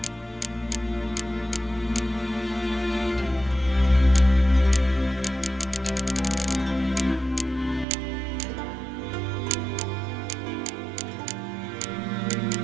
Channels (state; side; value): drops out; left; at 7.9 s